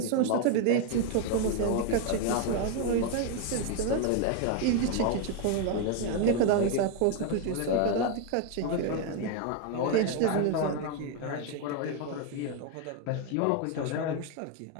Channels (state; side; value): different; both; correlation 0.01